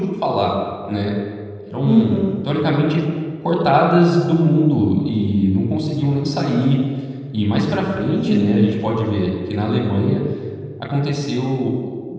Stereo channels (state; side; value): identical; both; correlation 1.00